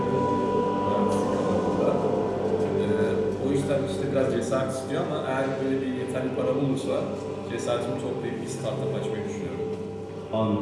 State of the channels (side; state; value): both; identical; correlation 1.00